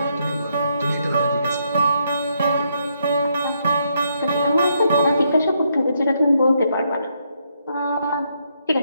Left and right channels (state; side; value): inverted; both; correlation -0.76